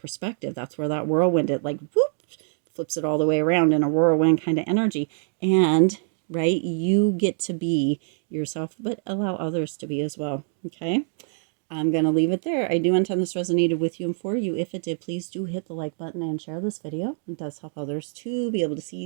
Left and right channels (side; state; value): left; silent; digital silence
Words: That's where that whirlwind, it like whoop, flips it all the way around in a whirlwind kind of energy. And right, you get to be yourself, but allow others to be as well. Okay. I'm going to leave it there. I do intend this resonated with you and for you. If it did, please do hit the like button and share this video. It does help others to be able to